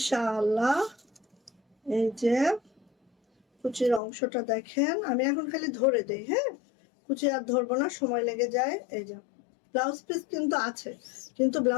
এই যে কুচির অংশটা দেখেন, আমি এখন খালি ধরে দেই, হ্যাঁ কুচি আর ধরবো না, সময় লেগে যায়। এই যে ব্লাউজ পিস কিন্তু আছে, কিন্তু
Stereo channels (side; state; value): right; drops out; at 4.0 s